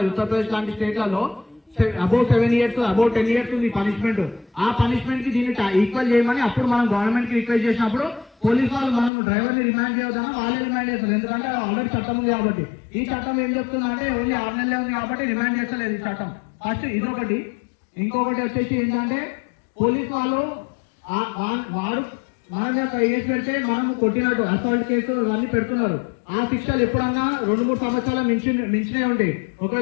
ఉత్తరప్రదేశ్ లాంటి స్టేట్లలో అబౌవ్ 7 years అబౌవ్ 10 years ఉంది పనిష్మెంట్. ఆ పనిష్మెంట్ కి దీన్ని ఈక్వల్ చేయమని అప్పుడు మనం గవర్నమెంట్ కి రిక్వెస్ట్ చేసినప్పుడు పోలీసు వాళ్ళు మనం డ్రైవర్ ని రిమాండ్ చేయొద్దని వాళ్ళే రిమాండ్ చేస్తారు. ఎందుకంటే ఆల్రెడీ చట్టం ఉంది కాబట్టి. ఈ చట్టం ఏం చెప్తుంది అంటే ఓన్లీ 6 నెలలే ఉంది కాబట్టి రిమాండ్ చేస్తలేదు ఈ చట్టం. ఫస్ట్ ఇదొకటి. ఇంకొకటి వచ్చేసి ఏంటంటే పోలీసు వాళ్ళు వాడు మన మీద కేసు పెడితే మనం కొట్టినట్టు అసాల్ట్ కేసు ఇవన్నీ పెడుతున్నారు. ఆ శిక్షలు ఎప్పుడన్నా 2-3 సంవత్సరాల మించినే ఉంటాయి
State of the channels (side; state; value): right; drops out; at 9.1 s